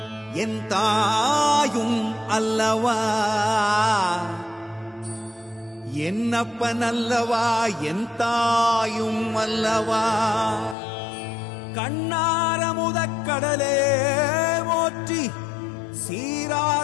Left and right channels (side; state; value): right; drops out; at 10.8 s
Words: என் தாயும் அல்லவா என்னப்பன் அல்லவா என் தாயும் அல்லவா கண்ணாரமுதக்கடலே போற்றி